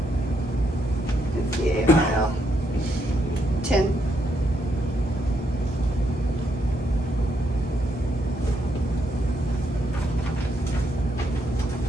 It's E-A-R-L. 10.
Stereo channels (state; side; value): normal; both; correlation 0.77